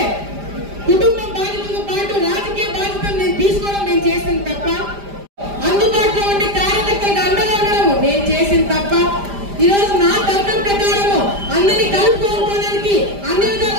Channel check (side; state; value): left; late; 5.0 ms